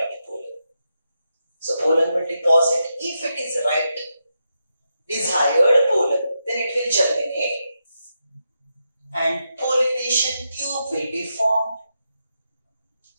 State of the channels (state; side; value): inverted; both; correlation -0.85